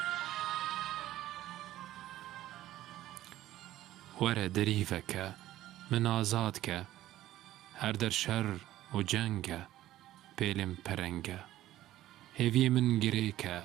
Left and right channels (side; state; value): left; quieter; 14.3 dB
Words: وەرە دەریڤەکە من ئازادکە هەر دەر شەڕ و جەنگە پێلێم پەرەنگە هێڤیە من گرێکە